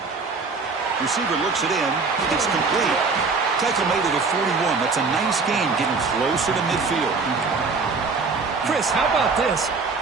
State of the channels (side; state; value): left; quieter; 4.4 dB